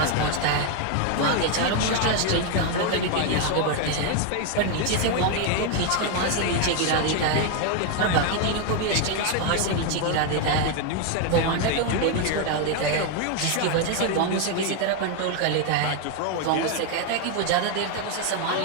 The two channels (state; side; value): different; both; correlation 0.01